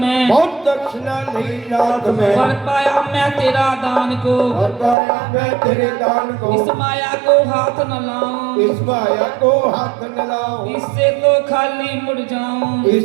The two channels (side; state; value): left; drops out; at 5.0 s